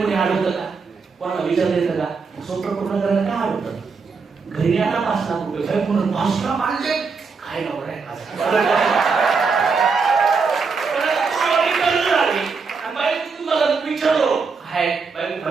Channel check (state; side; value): quieter; left; 4.9 dB